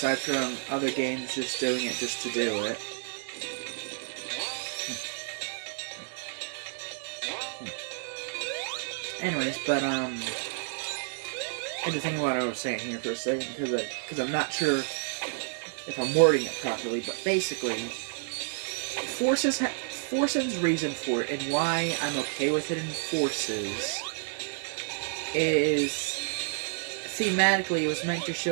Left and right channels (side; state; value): left; silent; digital silence